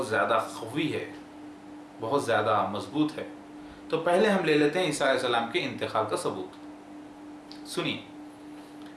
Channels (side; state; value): both; identical; correlation 1.00